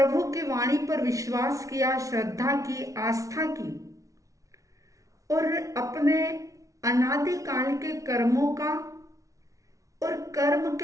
की वाणी पर विश्वास किया, श्रद्धा की, आस्था की और अपने अनादिकाल के कर्मों का और कर्म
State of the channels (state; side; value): late; left; 0.16 ms